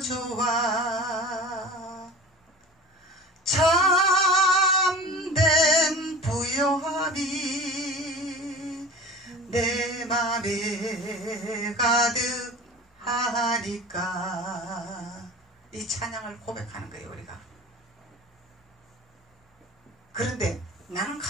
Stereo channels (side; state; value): both; normal; correlation 0.37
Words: 좋아, 참된 부요함이 내 맘에 가득하니까, 이 찬양을 고백하는 거예요, 우리가. 그런데 나는